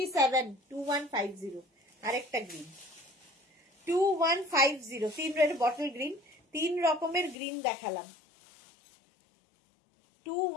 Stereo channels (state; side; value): drops out; right; at 7.4 s